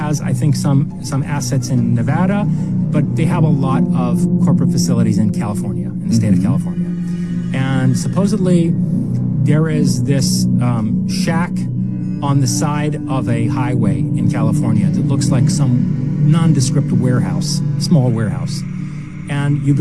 I think, some assets in Nevada, but they have a lot of corporate facilities in California, in the state of California. And supposedly, there is this shack on the side of a highway in California that looks like some nondescript warehouse, small warehouse. And you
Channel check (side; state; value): both; identical; correlation 1.00